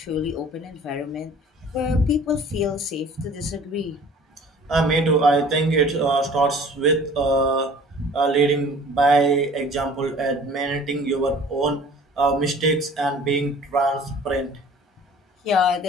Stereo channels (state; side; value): normal; both; correlation 0.48